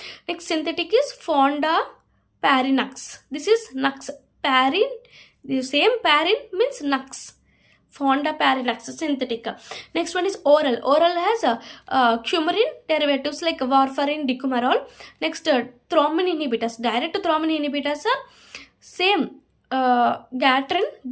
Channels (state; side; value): identical; both; correlation 1.00